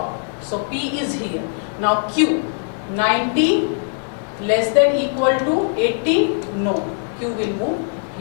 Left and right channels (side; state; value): right; silent; 60 dB below the other